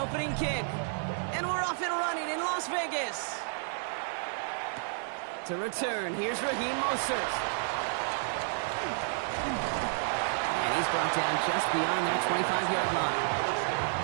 kick. And we're off and running in Las Vegas. To return, here's Raheem Mostert. And he's brought down just beyond that 25-yard line.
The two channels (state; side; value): silent; left; 55 dB below the other